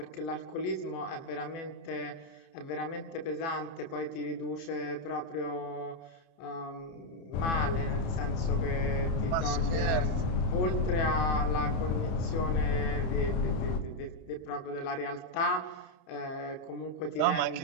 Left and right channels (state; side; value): late; right; 30 ms